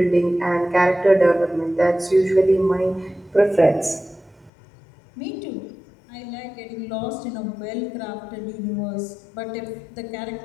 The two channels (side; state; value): right; drops out; at 4.5 s